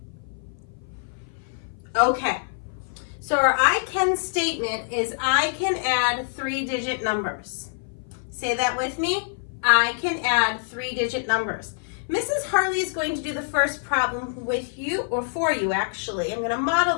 Okay, so our I can statement is I can add 3-digit numbers. Say that with me. I can add 3-digit numbers. Mrs. Harley is going to do the first problem with you, or for you actually. I'm going to model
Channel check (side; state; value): right; silent; 56 dB below the other